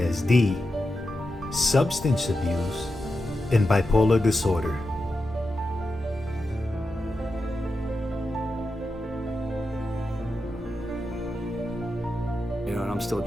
substance abuse, and bipolar disorder. You know, and I'm still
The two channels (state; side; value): normal; both; correlation 0.89